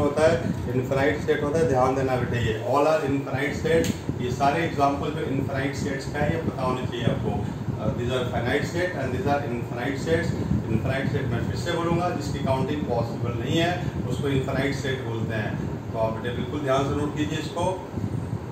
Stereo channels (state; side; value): identical; both; correlation 1.00